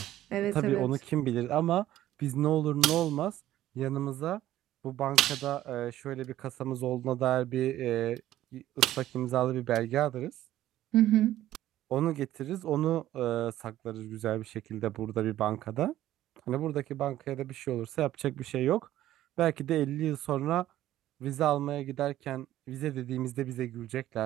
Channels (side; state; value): left; quieter; 13.6 dB